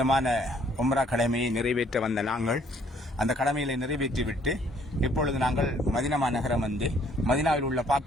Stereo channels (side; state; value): both; normal; correlation 0.62